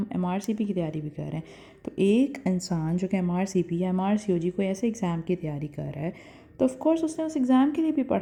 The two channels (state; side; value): identical; both; correlation 1.00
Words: MRCP की तैयारी भी कर रहे हैं। तो एक इंसान जो कि MRCP या MRCOG कोई ऐसे एग्ज़ाम की तैयारी कर रहा है, तो ऑफ़ कोर्स उसने उस एग्ज़ाम के लिए भी